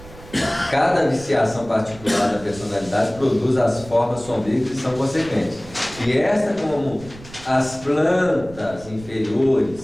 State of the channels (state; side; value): noise; right; rumble, 18 dB below the sound